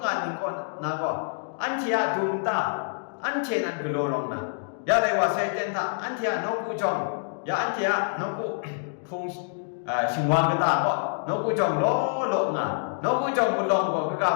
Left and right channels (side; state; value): right; silent; digital silence